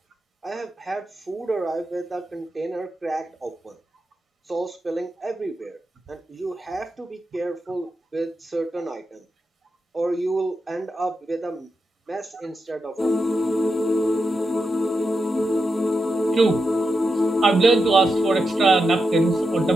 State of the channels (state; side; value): normal; both; correlation 0.87